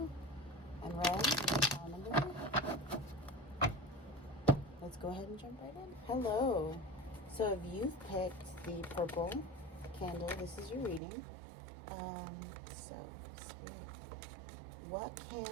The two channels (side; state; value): left; drops out; at 11.0 s